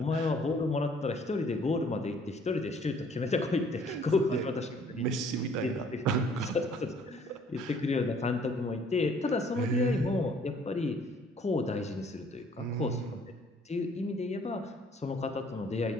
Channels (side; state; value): both; normal; correlation 0.59